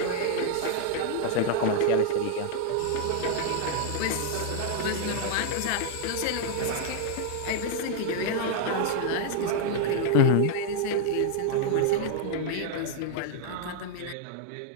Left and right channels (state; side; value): different; both; correlation 0.00